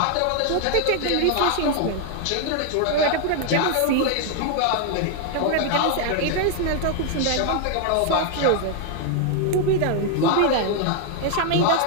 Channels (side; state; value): both; different; correlation 0.00